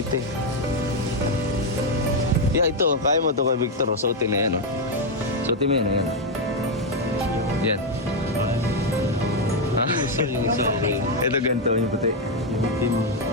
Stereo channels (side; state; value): both; normal; correlation 0.03